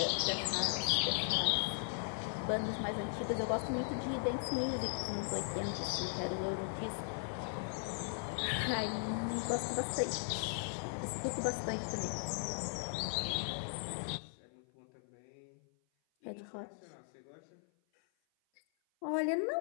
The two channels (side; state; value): right; silent; 52 dB below the other